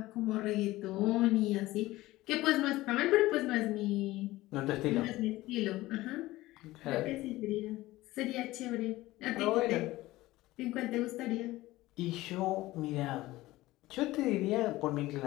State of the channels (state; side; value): quieter; right; 17.8 dB